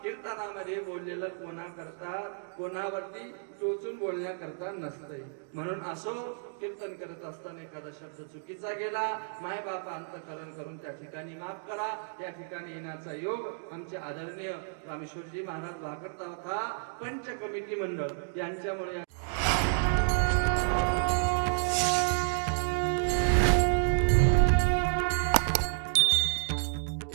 कीर्तनामध्ये बोललेलं कोणाकरता कोणावरती टोचून बोलण्याकरता नसतंय. म्हणून असो कीर्तन करत असताना एखादा शब्द चुकीचा गेला माय बापा अंतकरण करून त्या ठिकाणी माफ करा. या ठिकाणी येण्याचा योग आमचे आदरणीय रामेश्वरजी महाराज वाकरता होता पंच कमिटी मंडळ यांच्यामुळे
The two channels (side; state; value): left; silent; digital silence